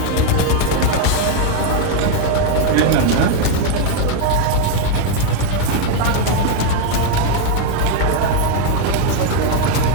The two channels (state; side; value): different; both; correlation 0.01